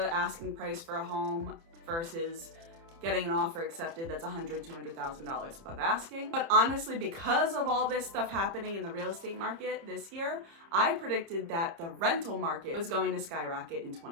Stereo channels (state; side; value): late; left; 30 ms